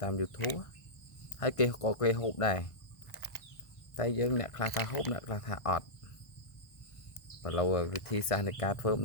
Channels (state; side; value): late; right; 1.6 ms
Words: តាម YouTube ហើយគេក៏គេហូបដែរតែយើងអ្នកខ្លះថាហូបអ្នកខ្លះថាអត់បើឡូវវិធីសាស្ត្រនៃការធ្វើ